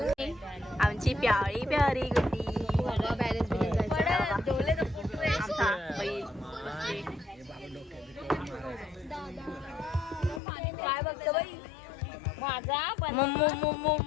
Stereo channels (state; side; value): drops out; right; at 10.4 s